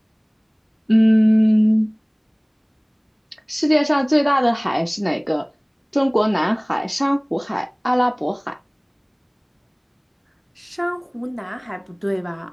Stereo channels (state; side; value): identical; both; correlation 1.00